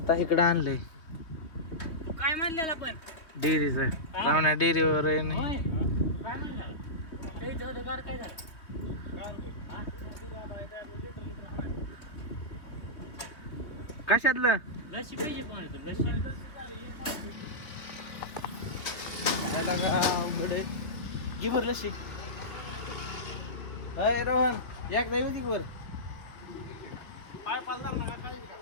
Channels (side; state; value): right; late; 3.0 ms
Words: इकडे आणलंय काय म्हणलेला पण डेअरीचं. रावण्या डेअरीवर आहे नाही. होय काय म्हणला ते होतं गाड काय झालं कशातलं लशी पाहिजे पण तू लशी खायला का अवघड आहे. घे बरं लशी. अय रोहन एकदा येऊ दे वर.